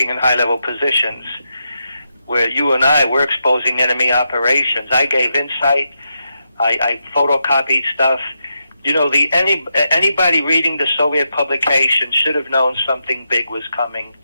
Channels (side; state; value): both; inverted; correlation -0.85